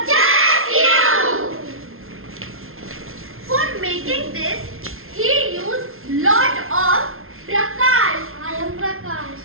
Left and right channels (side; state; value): left; late; 0.61 ms